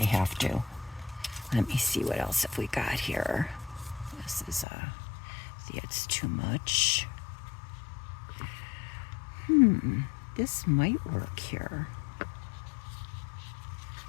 have to. Let me see what else have we got here. This is, see, it's too much. This might work here.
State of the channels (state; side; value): drops out; right; at 4.7 s